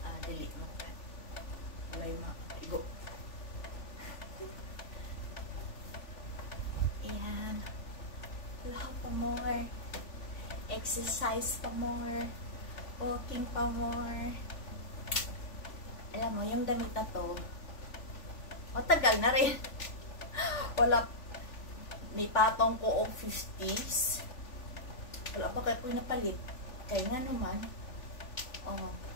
Dili mo ka. Walay maigo. Ayan. Kalahap pa more. Exercise pa more. Walking pa more. Alam mo, yung damit na to, matagal na rin. Wala, may patong ko og 50s. Wala pa kayo po napalit. Kaya nga naman,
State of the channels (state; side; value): late; right; 3.5 ms